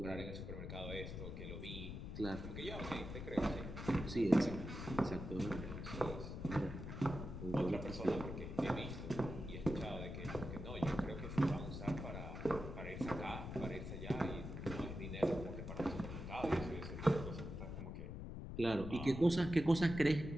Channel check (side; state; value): left; noise; rumble, 7 dB below the sound